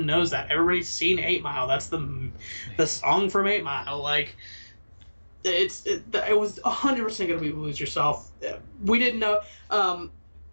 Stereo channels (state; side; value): inverted; both; correlation -1.00